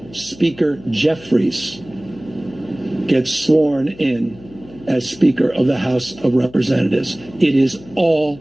Speaker Jeffries gets sworn in as Speaker of the House of Representatives, it is all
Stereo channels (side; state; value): left; noise; hum, 21 dB below the sound